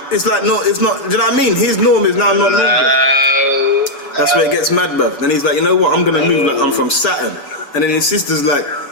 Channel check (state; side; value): late; right; 6.9 ms